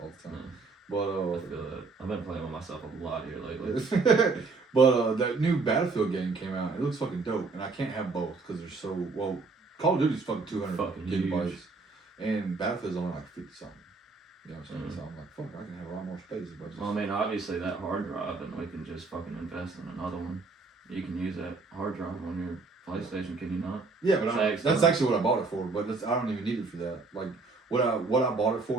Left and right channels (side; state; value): left; quieter; 4.1 dB